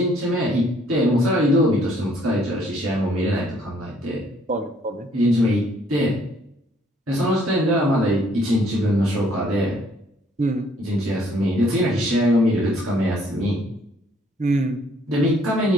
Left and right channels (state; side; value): normal; both; correlation 0.63